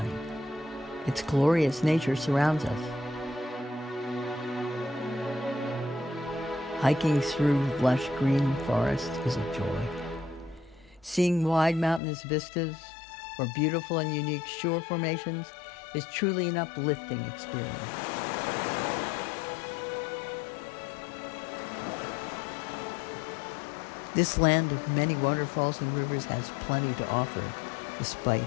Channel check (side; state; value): right; drops out; at 12.0 s